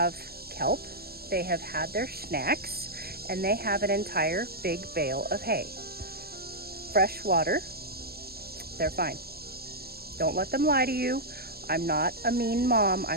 kelp. They have had their snacks, and they have an entire big bale of hay. Fresh water. They're fine. Don't let them lie to you. I'm not a mean mom.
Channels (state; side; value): late; left; 0.45 ms